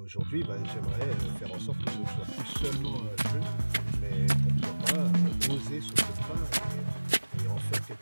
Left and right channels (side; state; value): both; inverted; correlation -1.00